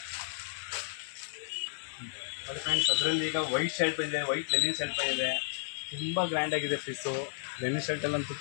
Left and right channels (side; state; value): right; silent; 56 dB below the other